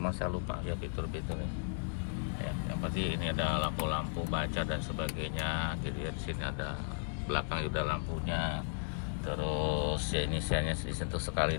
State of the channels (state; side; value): silent; right; digital silence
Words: saya lupa ya fitur-fiturnya ya. Yang pasti ini ada lampu-lampu baca dan sebagainya gitu ya. Di sini ada belakang juga lampunya. Terus ya ini saya disentuh sekali